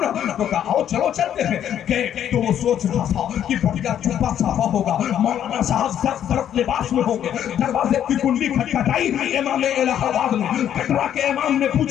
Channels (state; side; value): quieter; right; 10.1 dB